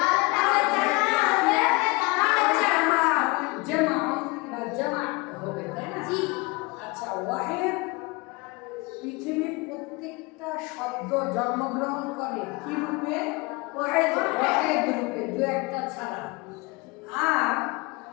জামা হবে, তাই না? আচ্ছা, ওয়াহেদ পৃথিবীর প্রত্যেকটা শব্দ জন্মগ্রহণ করে কি রূপে? ওয়াহেদ রূপে, দু একটা ছাড়া। আর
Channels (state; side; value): quieter; right; 25.8 dB